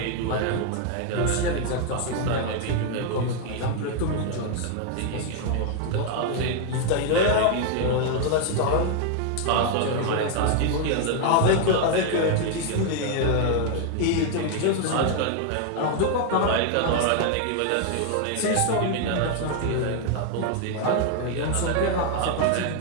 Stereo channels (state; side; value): different; both; correlation 0.00